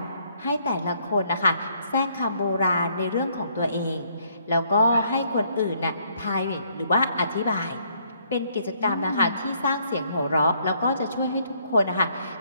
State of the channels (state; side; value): inverted; both; correlation -0.68